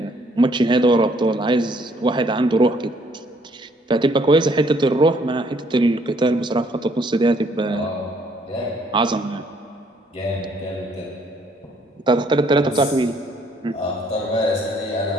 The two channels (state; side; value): normal; both; correlation 0.65